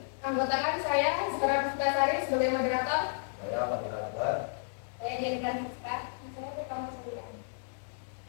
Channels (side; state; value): right; silent; digital silence